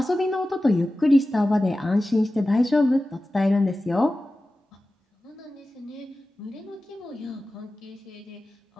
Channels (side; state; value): both; normal; correlation 0.95